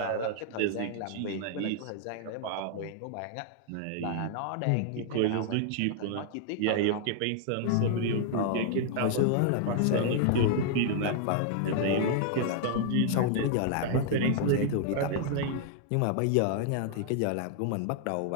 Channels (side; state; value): both; different; correlation -0.01